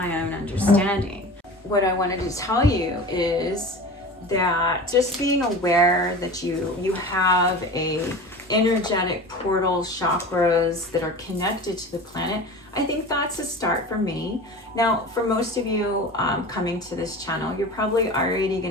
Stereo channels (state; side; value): normal; both; correlation 0.34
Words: own understanding. What I wanted to tell you is that just being aware that you have a energetic portal chakras that are connected to the planet, I think that's a start for me. Now, for most of you coming to this channel, you're probably already